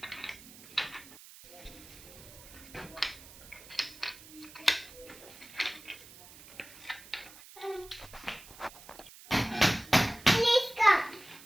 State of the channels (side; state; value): right; noise; hiss, 19 dB below the sound